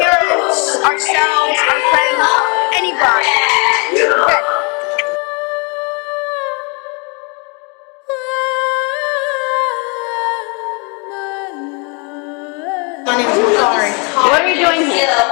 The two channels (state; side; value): quieter; right; 33.7 dB